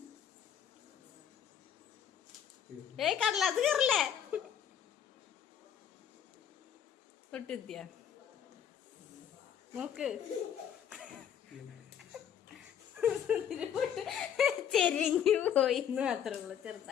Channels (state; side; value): quieter; right; 8.9 dB